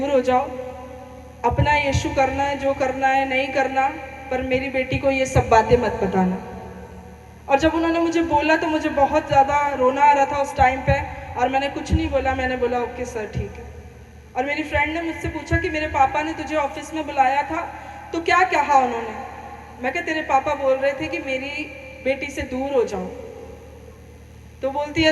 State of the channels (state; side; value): identical; both; correlation 1.00